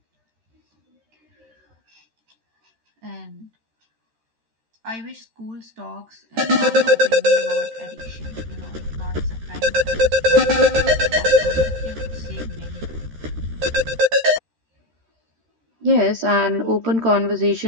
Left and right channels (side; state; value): left; late; 13 ms